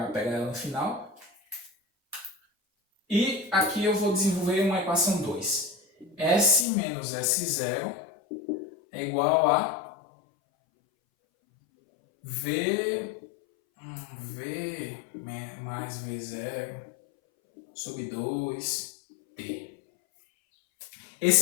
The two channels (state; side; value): drops out; right; at 6.7 s